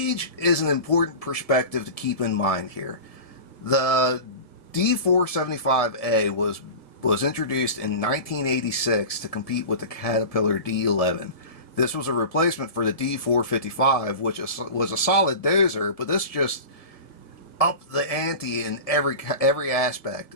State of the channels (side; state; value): right; late; 1.7 ms